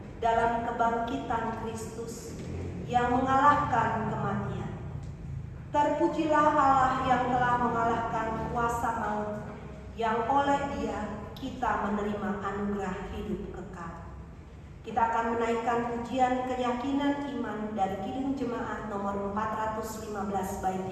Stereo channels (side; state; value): both; identical; correlation 1.00